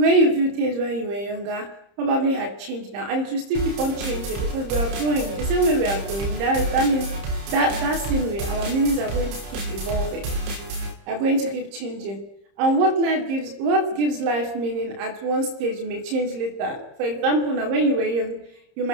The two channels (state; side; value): late; left; 30 ms